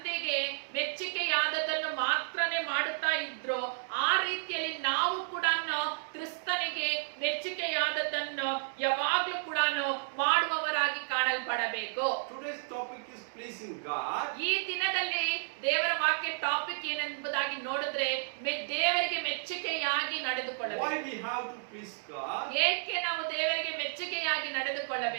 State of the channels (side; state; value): left; silent; digital silence